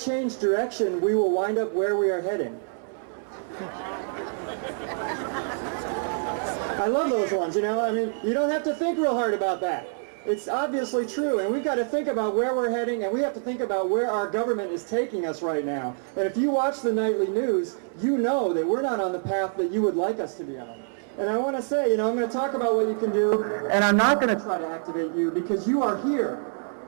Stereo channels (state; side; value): silent; left; 61 dB below the other